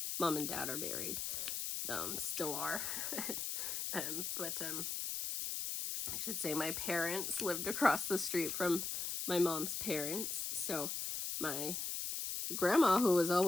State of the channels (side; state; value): left; noise; hiss, 2 dB below the sound